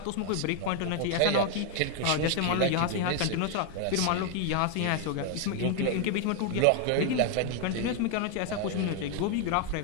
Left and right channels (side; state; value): both; different; correlation 0.00